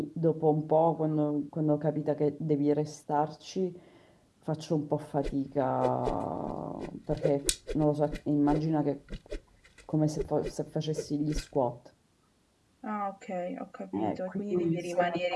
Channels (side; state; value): both; identical; correlation 1.00